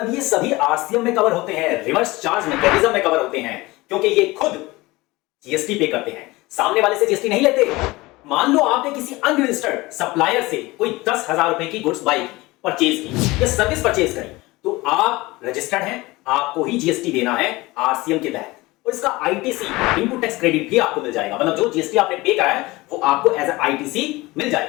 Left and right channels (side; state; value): right; quieter; 21.1 dB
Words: ये सभी आरसीएम में कवर होते हैं, रिवर्स चार्ज मैकेनिज्म में कवर होते हैं, क्योंकि ये खुद जीएसटी पे करते हैं, सामने वाले से जीएसटी नहीं लेते। मान लो आपने किसी अनरजिस्टर्ड सप्लायर से कोई 10,000 रुपए की गुड्स बाई की, परचेज की या सर्विस परचेज करी, तो आप रजिस्टर्ड हैं, आपको ही जीएसटी देना है आरसीएम के तहत, और इसका आईटीसी, इनपुट टैक्स क्रेडिट भी आपको मिल जाएगा। मतलब जो जीएसटी आपने पे करा है वो आपको एज आईटीसी मिल